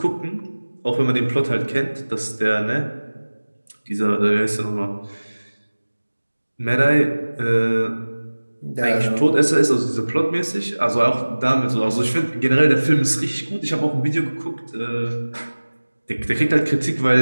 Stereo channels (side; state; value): both; inverted; correlation -1.00